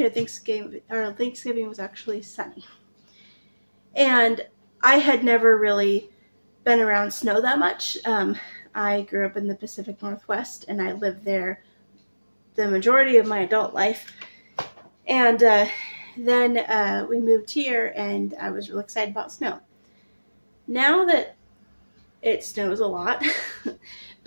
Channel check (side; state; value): both; inverted; correlation -1.00